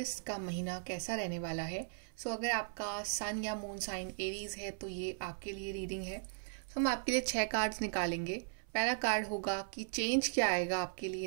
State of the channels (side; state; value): left; silent; 53 dB below the other